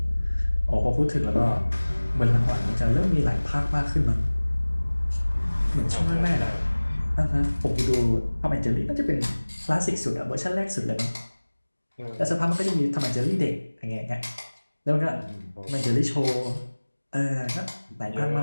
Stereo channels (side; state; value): both; inverted; correlation -1.00